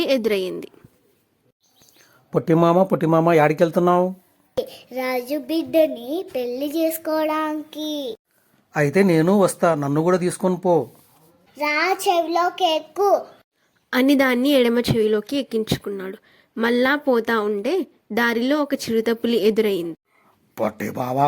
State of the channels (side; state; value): both; identical; correlation 1.00